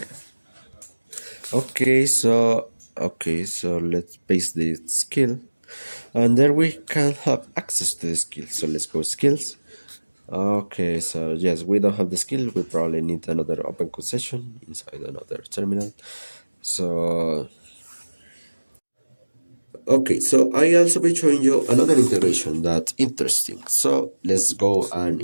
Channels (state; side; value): inverted; both; correlation -1.00